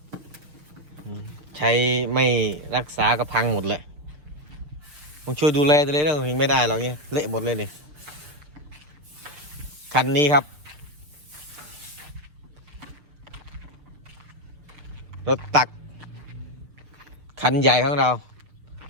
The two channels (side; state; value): left; late; 6.4 ms